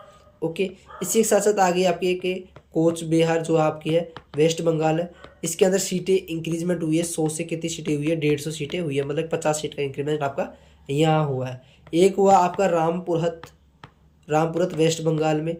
ओके, इसी के साथ साथ आ गई आपकी एक कोच बिहार जो आपकी है वेस्ट बंगाल है, इसके अंदर सीटें इंक्रीजमेंट हुई है। 100 से कितनी सीटें हुई है, 150 सीटें हुई है, मतलब 50 सीट का इंक्रीमेंट आपका यहाँ हुआ है। एक हुआ आपका रामपुरत वेस्ट बंगाल में,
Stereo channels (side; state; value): both; identical; correlation 1.00